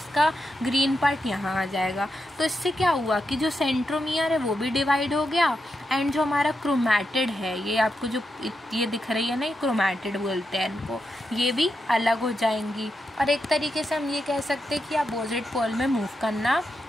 ग्रीन पार्ट यहाँ आ जाएगा। तो इससे क्या हुआ कि जो सेंट्रोमियर है वो भी डिवाइड हो गया, एंड जो हमारा क्रोमैटिड है, ये आपको जो ये दिख रही है ना, ये क्रोमैटिड बोलते हैं इनको, ये भी अलग हो जाएंगी। और एक तरीके से हम ये कह सकते हैं कि अपोजिट पोल में मूव करना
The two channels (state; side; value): normal; both; correlation 0.86